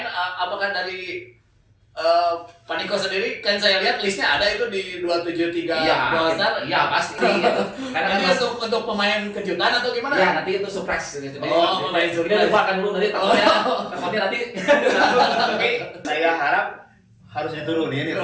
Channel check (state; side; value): identical; both; correlation 1.00